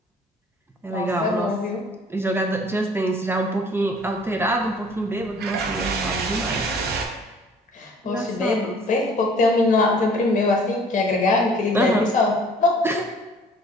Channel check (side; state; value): both; normal; correlation 0.53